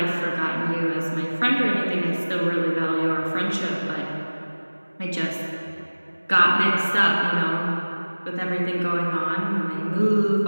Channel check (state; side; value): inverted; both; correlation -1.00